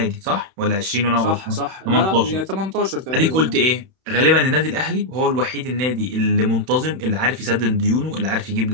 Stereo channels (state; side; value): late; left; 31 ms